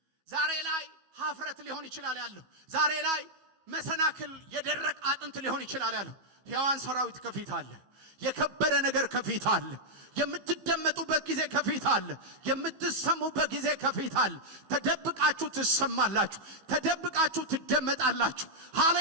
ዛሬ ላይ ሀፍረት ሊሆን ይችላል ያለው። ዛሬ ላይ መሰናክል የደረቅ አጥንት ሊሆን ይችላል ያለው። ሕያዋን ሰራዊት ከፊት አለ። የከበረ ነገር ከፊት አለ። የምትደመጡበት ጊዜ ከፊት አለ። የምትሰሙበት ጊዜ ከፊት አለ። ተደብቃችሁ ትሰማላችሁ። ተደብቃችሁ ትደመጣላችሁ።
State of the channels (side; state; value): left; late; 16 ms